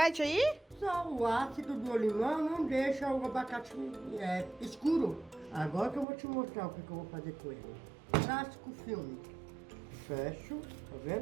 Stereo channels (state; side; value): drops out; left; at 6.1 s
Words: aí? Só o ácido do limão não deixa o abacate escuro. Agora que eu vou te mostrar o que eu vou fazer com ele. Plástico filme. Fecho, tá